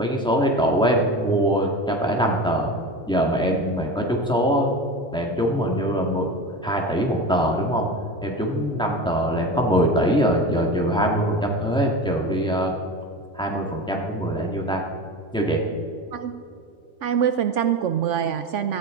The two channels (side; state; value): both; normal; correlation 0.29